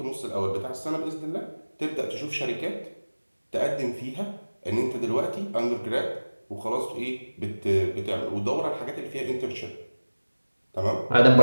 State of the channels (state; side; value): inverted; both; correlation -1.00